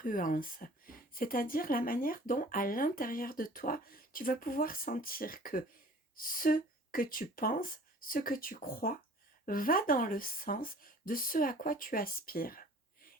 c'est-à-dire la manière dont à l'intérieur de toi, tu vas pouvoir sentir que ce que tu penses, ce que tu crois, va dans le sens de ce à quoi tu aspires.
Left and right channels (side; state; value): both; normal; correlation 0.48